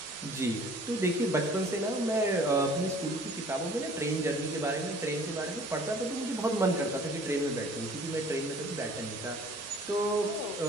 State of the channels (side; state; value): both; normal; correlation 0.52